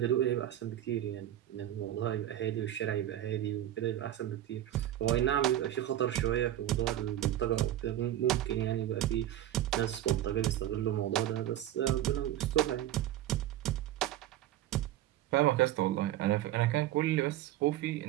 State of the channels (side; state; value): left; quieter; 12.9 dB